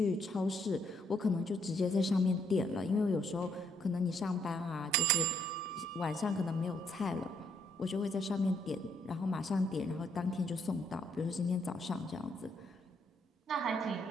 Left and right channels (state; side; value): normal; both; correlation 0.71